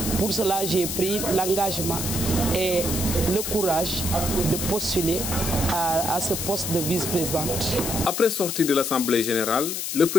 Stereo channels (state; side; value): noise; left; hiss, 3 dB below the sound